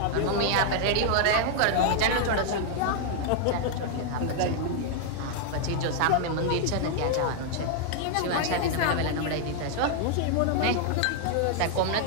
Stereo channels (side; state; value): both; different; correlation 0.00